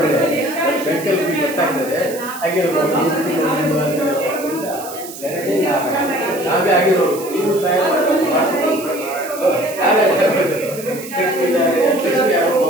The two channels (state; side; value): noise; right; hiss, 14 dB below the sound